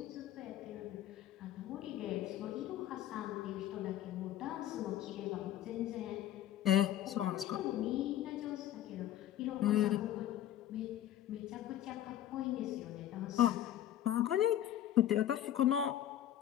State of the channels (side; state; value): right; quieter; 12.0 dB